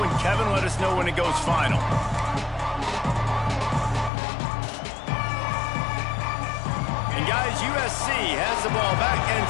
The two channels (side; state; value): right; drops out; at 4.1 s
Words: Kevin. Let us know when it goes final. And guys, USC has the ball back and